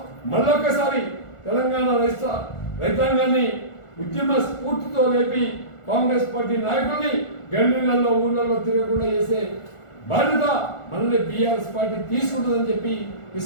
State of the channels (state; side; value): late; right; 1.4 ms